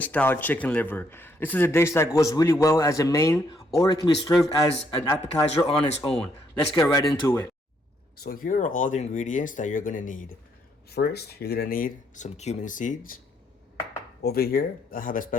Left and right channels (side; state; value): both; normal; correlation 0.71